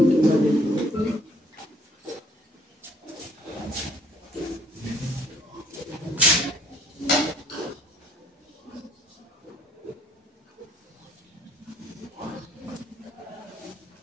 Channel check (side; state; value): both; normal; correlation 0.60